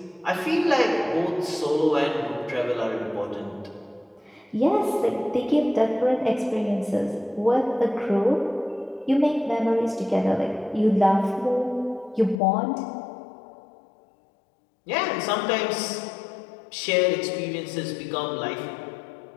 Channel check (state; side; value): drops out; right; at 12.4 s